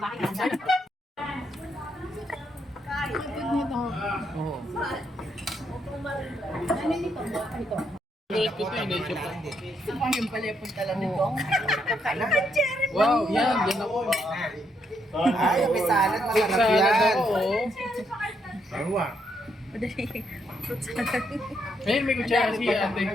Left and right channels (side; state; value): both; normal; correlation 0.76